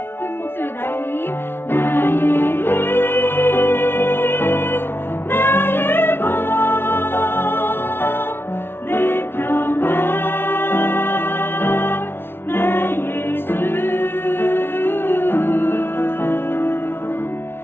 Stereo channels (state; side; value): late; right; 0.11 ms